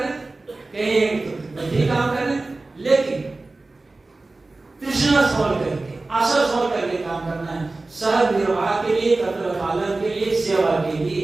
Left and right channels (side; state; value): left; quieter; 3.3 dB